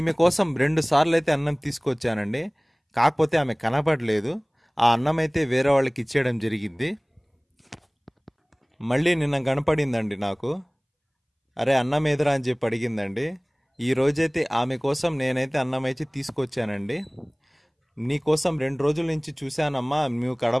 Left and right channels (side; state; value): both; identical; correlation 1.00